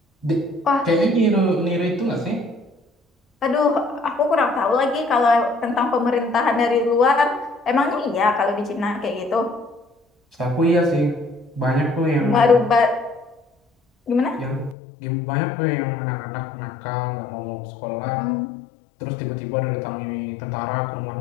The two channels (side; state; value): right; drops out; at 14.8 s